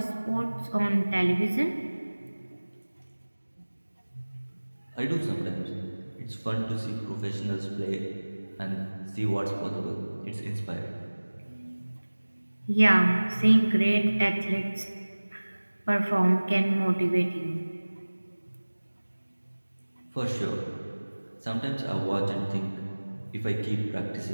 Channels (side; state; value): both; inverted; correlation -1.00